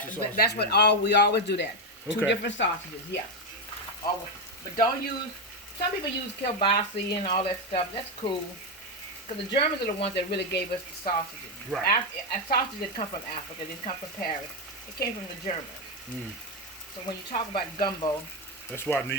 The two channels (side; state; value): both; normal; correlation 0.07